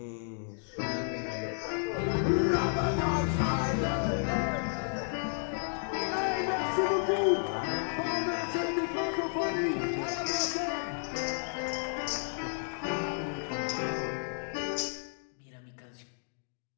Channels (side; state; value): right; silent; digital silence